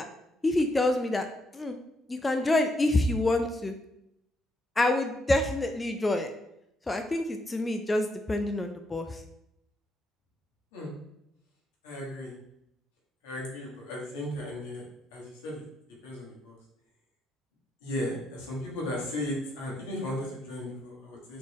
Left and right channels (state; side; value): normal; both; correlation 0.78